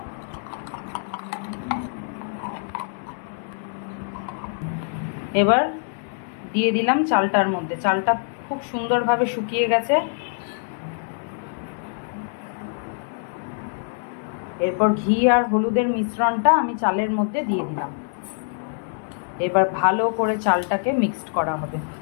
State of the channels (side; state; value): right; silent; digital silence